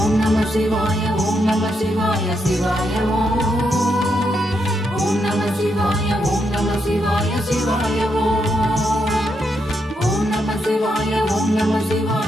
நம சிவாய ஓம் நம சிவாய சிவாய ஓம் நம சிவாய ஓம் நம சிவாய சிவாய ஓம் நம சிவாய ஓம் நம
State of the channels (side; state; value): both; normal; correlation 0.81